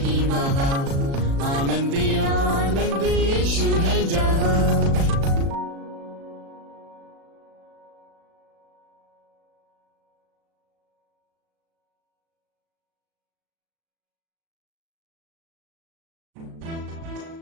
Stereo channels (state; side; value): late; left; 36 ms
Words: वहाँ, आनंदी आनंद यीशु है जहाँ।